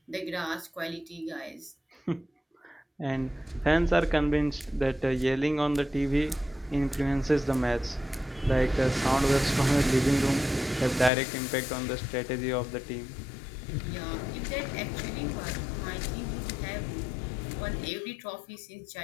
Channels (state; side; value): drops out; right; at 11.1 s